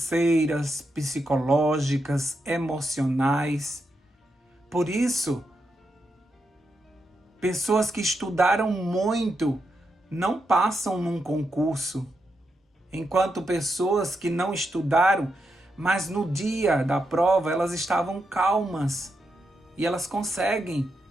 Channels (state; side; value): normal; both; correlation 0.84